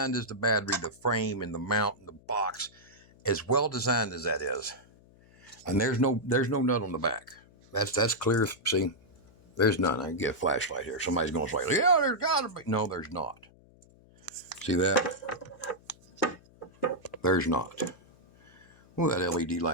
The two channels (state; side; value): noise; left; hum, 27 dB below the sound